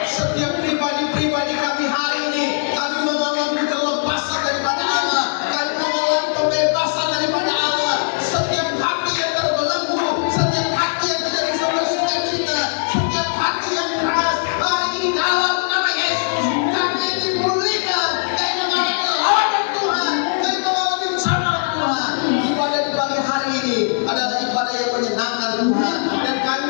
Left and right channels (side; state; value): right; silent; digital silence